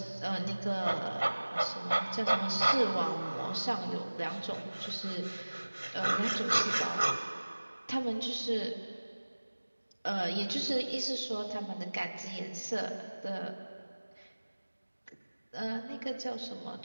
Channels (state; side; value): inverted; both; correlation -1.00